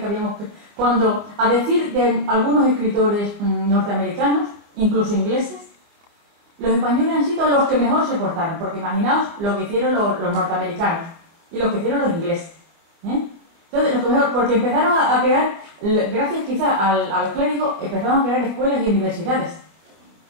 habíamos... Cuando, a decir de algunos escritores norteamericanos, incluso ingleses, los españoles han sido los que mejor se portaron, porque imaginaos lo que hicieron los norteamericanos y lo que hicieron los ingleses. Entonces, lo que mejor, porque empezaron a crear, gracias quizá a los clérigos, empezaron a crear escuelas y universidades.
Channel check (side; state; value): left; late; 25 ms